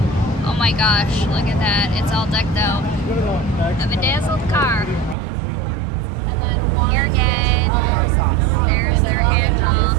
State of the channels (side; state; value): left; drops out; at 5.2 s